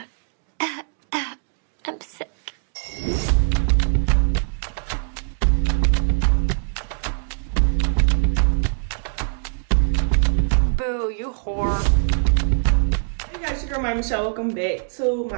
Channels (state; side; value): silent; left; digital silence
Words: I'm sick. Boo, you whore. Hey guys, your girl my Michelle. Welcome back to